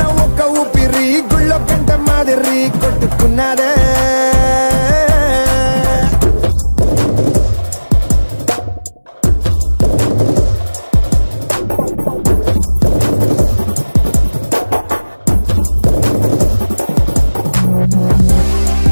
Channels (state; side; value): inverted; both; correlation -1.00